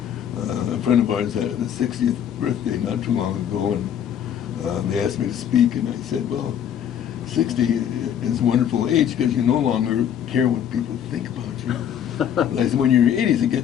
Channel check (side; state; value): right; quieter; 9.4 dB